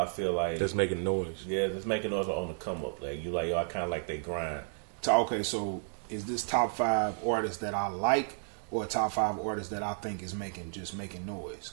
feel like that's making noise. Yeah, that's making noise on the come up. Like you like, yo, I kind of like they grind. Okay, so is this top 5 artists that I like, or top 5 artists that I think is making noise?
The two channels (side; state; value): left; silent; digital silence